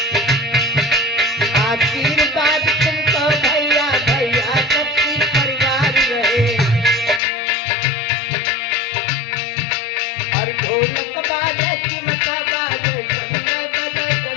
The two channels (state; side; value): drops out; right; at 7.2 s